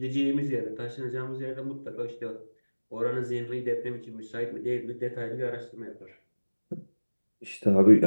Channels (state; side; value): inverted; both; correlation -1.00